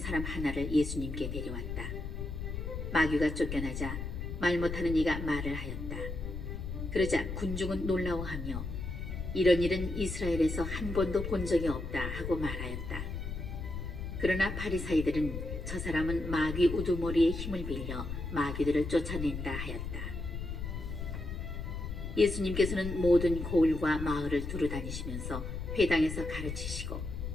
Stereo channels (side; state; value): left; noise; rumble, 5 dB below the sound